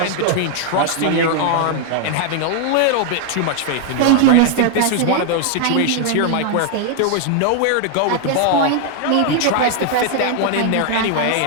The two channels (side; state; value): both; different; correlation 0.00